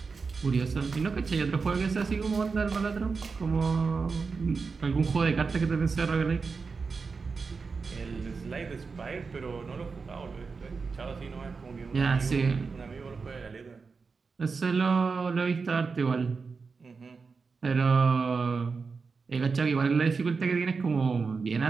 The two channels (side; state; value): left; quieter; 4.8 dB